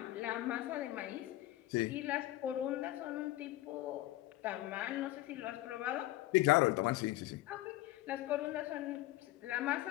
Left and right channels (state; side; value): quieter; right; 16.6 dB